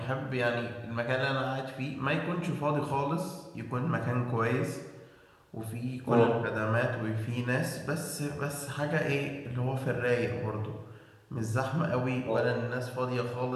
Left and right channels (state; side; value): identical; both; correlation 1.00